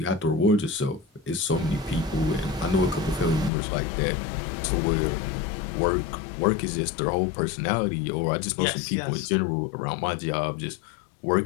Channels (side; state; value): right; drops out; at 3.5 s